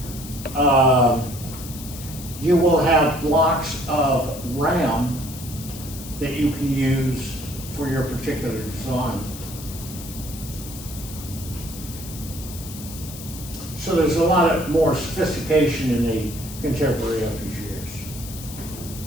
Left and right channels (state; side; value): noise; left; hiss, 13 dB below the sound